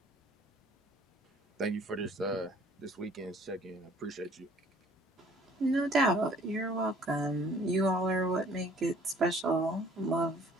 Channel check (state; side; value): normal; both; correlation 0.56